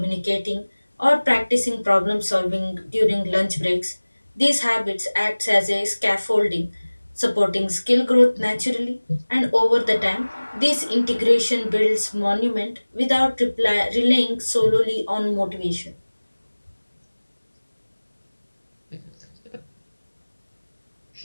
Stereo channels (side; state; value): both; inverted; correlation -1.00